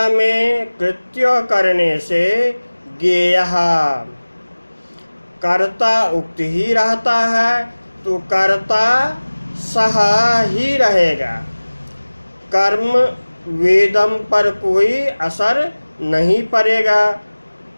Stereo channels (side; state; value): both; inverted; correlation -1.00